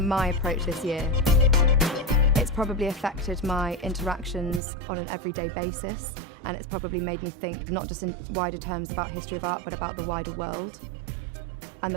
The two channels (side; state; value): left; drops out; at 4.6 s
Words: approach this year. It's probably affected my interactions on an everyday basis, and it's probably made me think not just in wider terms about history of art, but about the wider world and